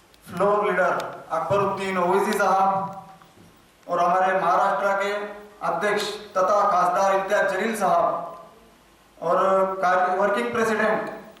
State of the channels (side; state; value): both; identical; correlation 1.00